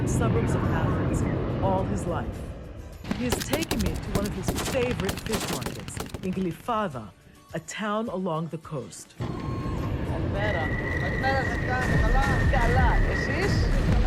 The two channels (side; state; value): both; identical; correlation 1.00